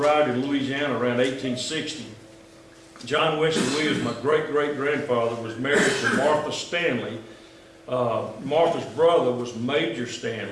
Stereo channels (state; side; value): identical; both; correlation 1.00